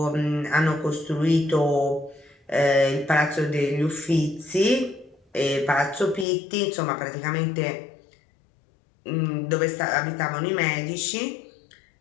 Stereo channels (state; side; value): drops out; right; at 6.2 s